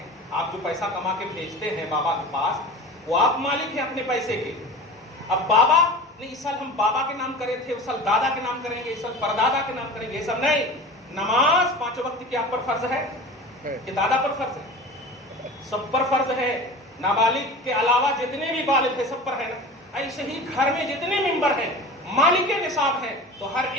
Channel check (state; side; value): normal; both; correlation 0.35